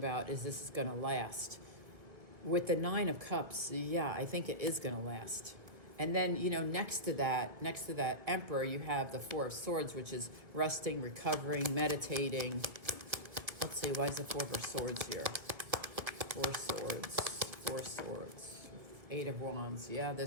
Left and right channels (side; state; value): left; late; 1.8 ms